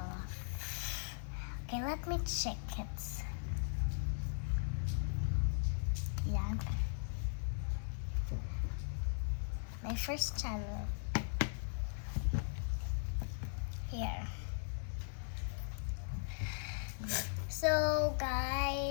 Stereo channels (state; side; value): silent; right; digital silence